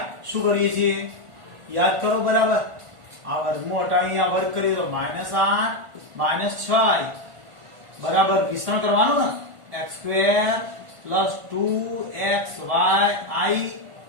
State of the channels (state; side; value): late; left; 1.5 ms